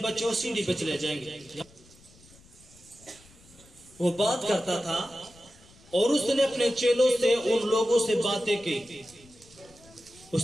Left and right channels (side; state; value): left; noise; rumble, 26 dB below the sound